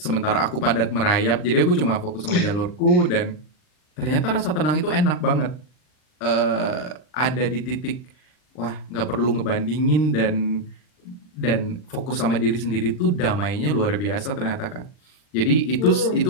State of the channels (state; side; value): late; right; 40 ms